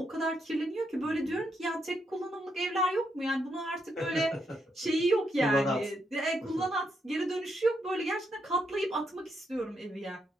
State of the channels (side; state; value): both; normal; correlation 0.79